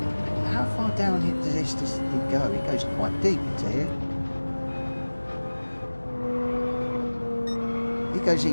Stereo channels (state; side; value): inverted; both; correlation -1.00